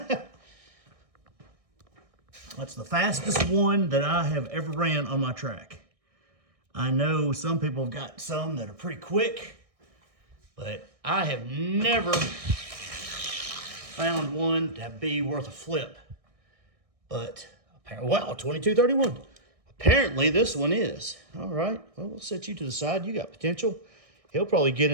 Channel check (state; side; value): late; left; 1.6 ms